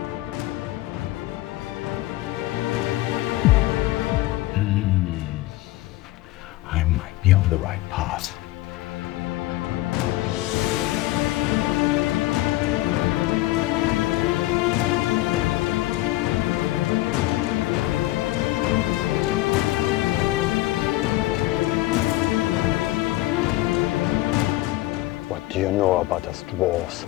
I might be on the right path. What do you know about us dwarves?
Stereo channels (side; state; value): right; quieter; 17.6 dB